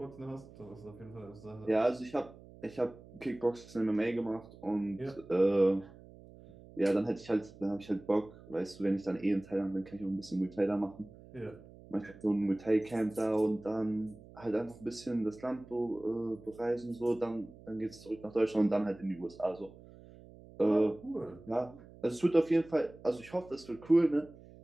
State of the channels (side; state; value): right; noise; hum, 20 dB below the sound